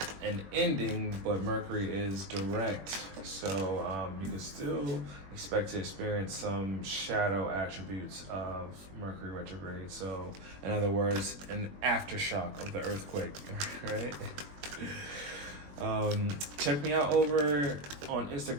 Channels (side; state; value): left; late; 21 ms